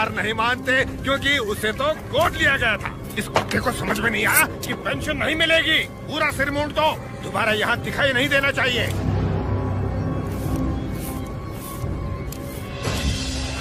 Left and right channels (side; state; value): both; identical; correlation 1.00